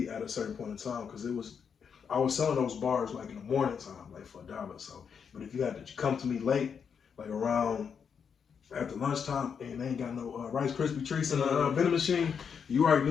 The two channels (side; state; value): right; quieter; 6.8 dB